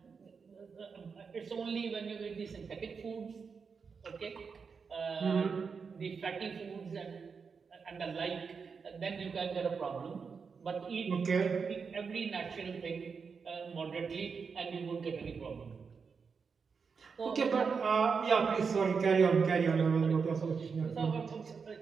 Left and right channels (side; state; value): left; quieter; 5.5 dB